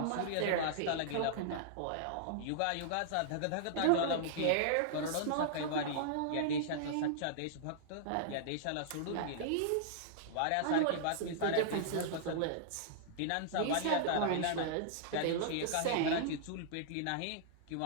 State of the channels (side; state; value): both; different; correlation -0.02